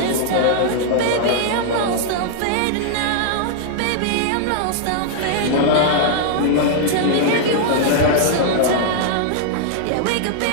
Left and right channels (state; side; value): different; both; correlation -0.01